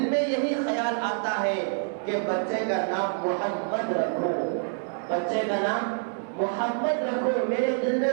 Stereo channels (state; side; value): silent; left; digital silence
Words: میں یہی خیال آتا ہے کہ بچے کا نام محمد رکھو، بچے کا نام محمد رکھو۔ میرے دل میں